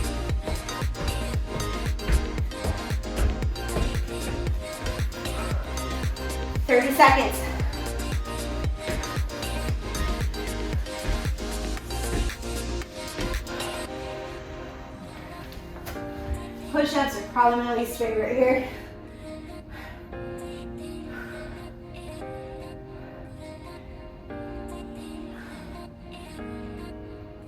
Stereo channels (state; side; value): identical; both; correlation 1.00